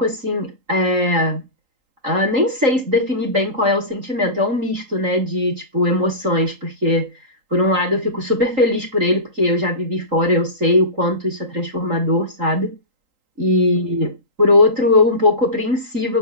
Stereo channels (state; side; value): late; left; 3.8 ms